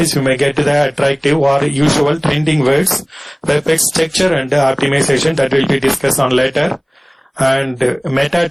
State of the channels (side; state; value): both; identical; correlation 1.00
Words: you may get the attractive or usual trending words, web page structure and optimization that will be discussed on later. And meta